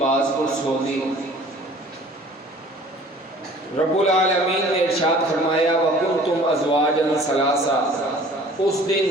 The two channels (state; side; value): normal; both; correlation 0.50